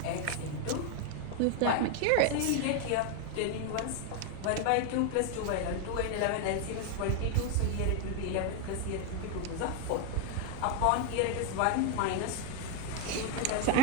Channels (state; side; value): different; both; correlation 0.01